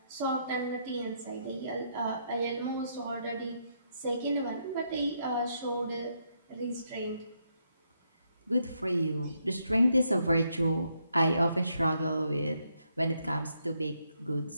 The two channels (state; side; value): inverted; both; correlation -0.77